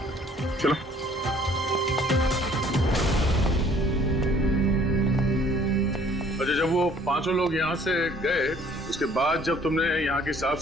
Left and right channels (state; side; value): normal; both; correlation 0.57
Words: चलो। अच्छा, जब वो 5 लोग यहाँ से गए, उसके बाद जब तुमने यहाँ की साफ